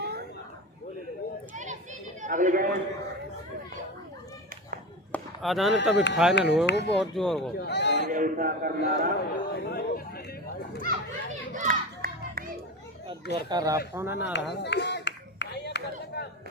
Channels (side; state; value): both; normal; correlation 0.25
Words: अगली गेंद आधान तभी फाइनल हुए वो बहुत जोर को जोर का रात होना ना रहा